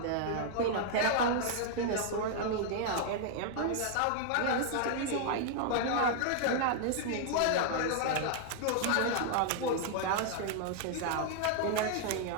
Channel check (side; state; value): both; different; correlation 0.00